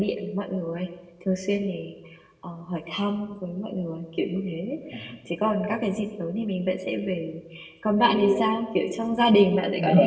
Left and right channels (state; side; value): identical; both; correlation 1.00